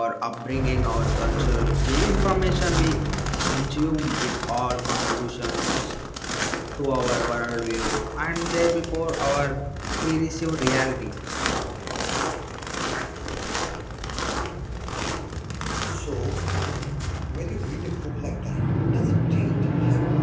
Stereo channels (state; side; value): identical; both; correlation 1.00